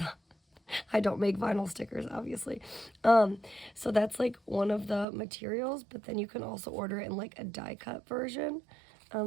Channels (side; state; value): left; drops out; at 5.1 s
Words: I don't make vinyl stickers, obviously. So that's like one of the materials, but then you can also order it in like a die cut version.